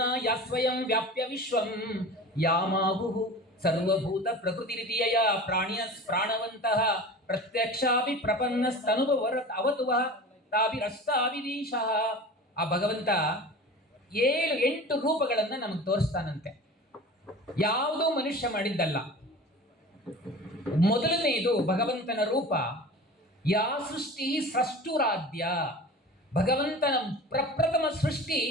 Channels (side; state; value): both; normal; correlation 0.37